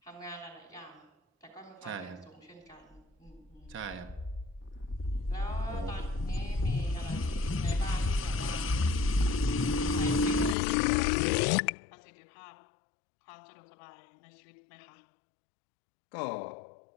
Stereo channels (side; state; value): right; drops out; at 10.6 s